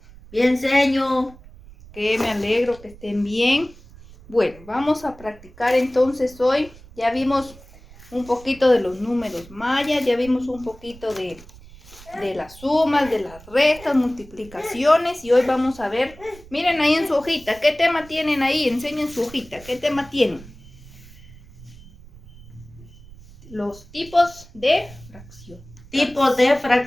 bien, señor. Que me alegro que estén bien. Bueno, vamos a practicar entonces hoy. Ya vimos un poquito de los números mayas, ya vimos un poquito de las sumas, de las restas, multiplicaciones y hoy vamos a ver, miren ahí en su hojita, ¿qué tema tienen ahí? Enseñen su hojita, ¿qué tema tienen? Los tipos de fracción. Tipos de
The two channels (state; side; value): noise; right; rumble, 21 dB below the sound